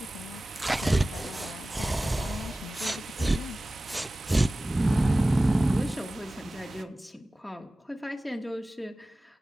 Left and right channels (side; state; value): both; normal; correlation 0.97